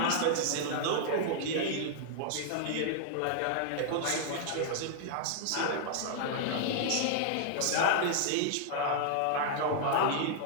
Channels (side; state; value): both; different; correlation -0.01